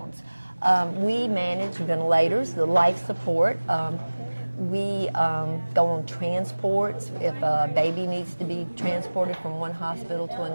We manage ventilators, the life support. We go on transports. If a baby needs to be transported from one hospital to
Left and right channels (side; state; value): both; inverted; correlation -1.00